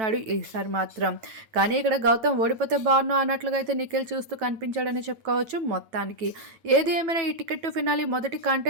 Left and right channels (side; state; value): left; late; 9.1 ms